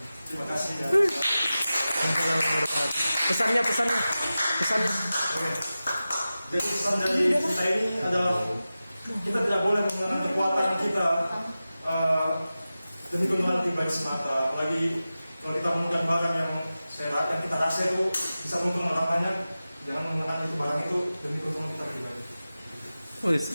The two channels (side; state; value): both; inverted; correlation -0.95